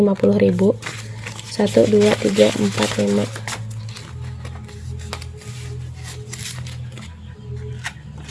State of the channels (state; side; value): identical; both; correlation 1.00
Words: 1, 2, 3, 4, 5.